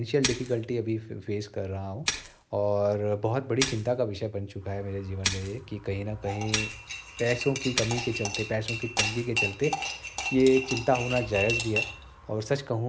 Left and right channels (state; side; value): identical; both; correlation 1.00